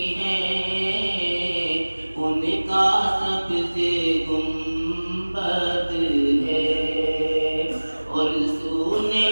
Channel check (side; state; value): both; inverted; correlation -1.00